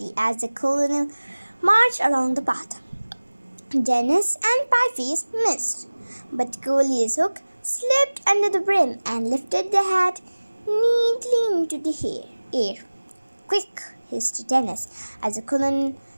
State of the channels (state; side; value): inverted; both; correlation -1.00